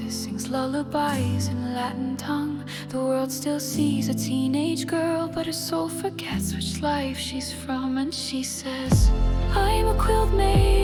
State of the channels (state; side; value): identical; both; correlation 1.00